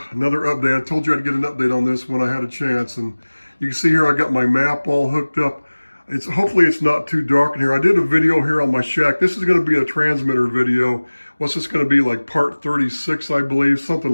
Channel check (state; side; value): inverted; both; correlation -1.00